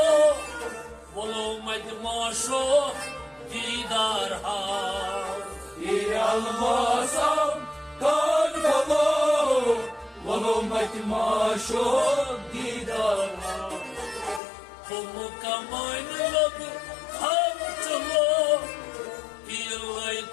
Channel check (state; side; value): drops out; right; at 14.4 s